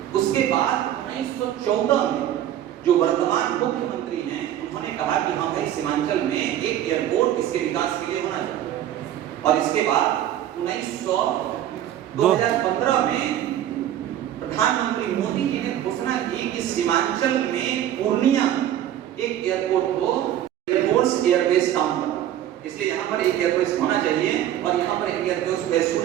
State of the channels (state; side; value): quieter; left; 11.6 dB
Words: उसके बाद 1914 में जो वर्तमान मुख्यमंत्री हैं, उन्होंने कहा कि हाँ भाई सीमांचल में एक एयरपोर्ट इसके विकास के लिए होना चाहिए। और इसके बाद 2015 में प्रधानमंत्री मोदी जी ने घोषणा की कि सीमांचल में पूर्णिया एक एयरपोर्ट को एयरफोर्स एयरबेस काम करना, इसलिए यहाँ पर एक एयरबेस होना चाहिए और यहाँ पर एक airbase as